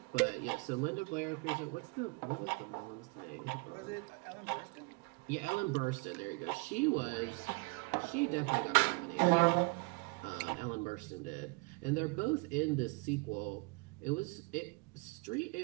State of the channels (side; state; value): left; quieter; 29.4 dB